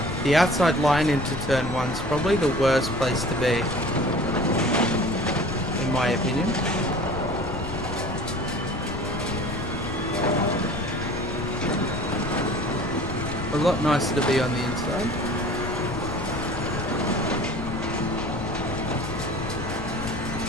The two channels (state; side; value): noise; left; rumble, 8 dB below the sound